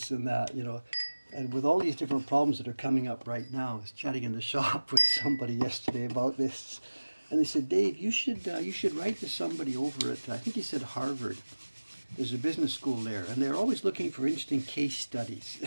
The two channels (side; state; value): both; inverted; correlation -1.00